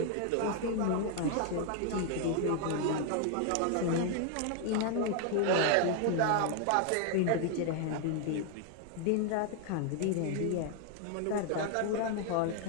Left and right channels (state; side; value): different; both; correlation 0.00